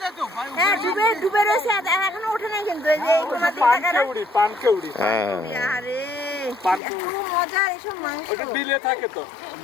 হ্যাঁ ডুবে ডুবে রয়েছে এখনো ওঠে নাই কিন্তু এই যে তোমার দিকে পানকেউড়ি হ্যাঁ আরে এত মজার এসব মাংস ওটা বিলে থাকে তো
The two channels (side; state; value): right; drops out; at 6.8 s